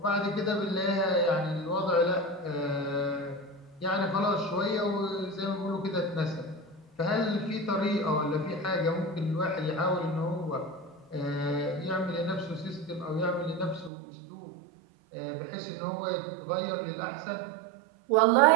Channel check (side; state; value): left; drops out; at 13.9 s